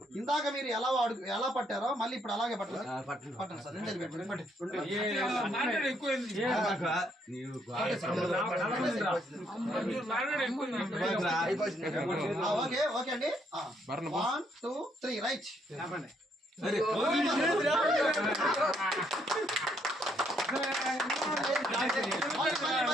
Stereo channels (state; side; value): normal; both; correlation 0.72